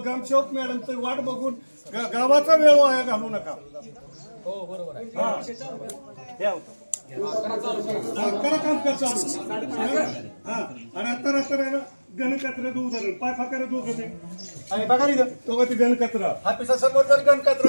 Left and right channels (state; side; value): inverted; both; correlation -1.00